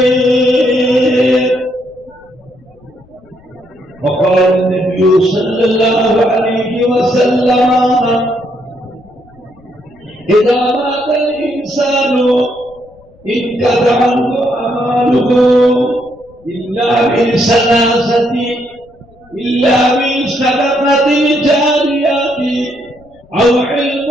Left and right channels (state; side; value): noise; left; rumble, 28 dB below the sound